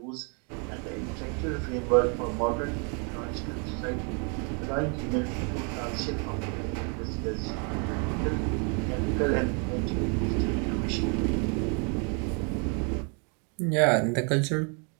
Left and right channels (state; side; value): quieter; left; 37.2 dB